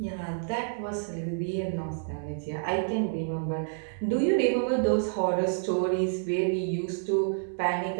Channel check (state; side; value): silent; left; digital silence